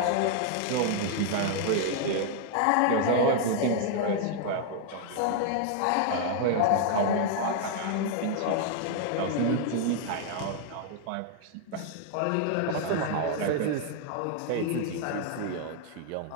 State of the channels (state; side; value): different; both; correlation 0.00